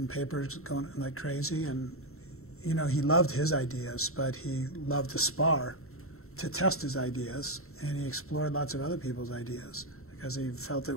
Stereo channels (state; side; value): late; right; 0.63 ms